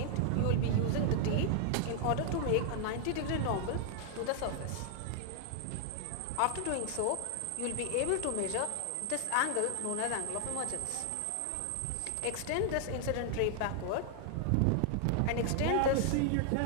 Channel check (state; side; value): different; both; correlation 0.00